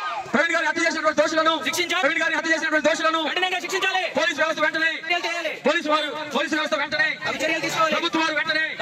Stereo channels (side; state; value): both; identical; correlation 1.00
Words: ప్రవీణ్ గారిని హత్య చేసినటువంటి దోషులను శిక్షించాలి. ప్రవీణ్ గారిని హత్య చేసినటువంటి దోషులను కఠినంగా శిక్షించాలి. పోలీసు వ్యవస్థ వెంటనే పోలీసు వ్యవస్థ వెంటనే చర్యలు తీసుకోవాలి. ప్రభుత్వం వారు వెంటనే